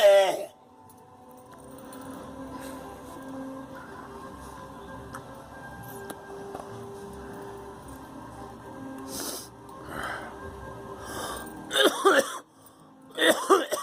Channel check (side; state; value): both; identical; correlation 1.00